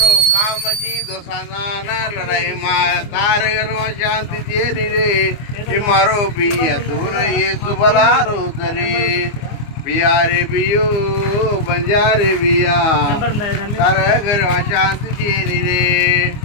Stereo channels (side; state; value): right; late; 24 ms